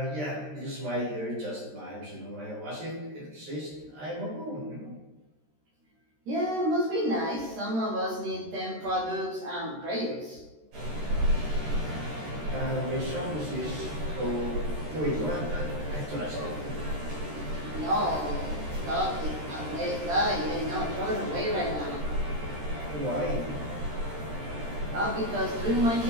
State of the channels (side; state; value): left; late; 13 ms